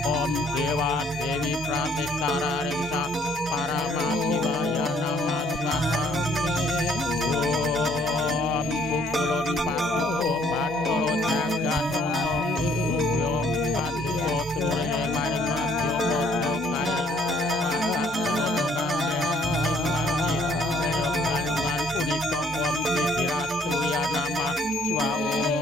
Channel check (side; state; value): both; normal; correlation 0.63